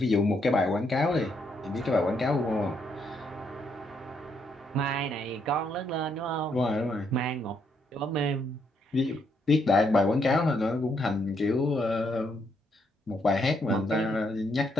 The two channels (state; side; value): normal; both; correlation 0.75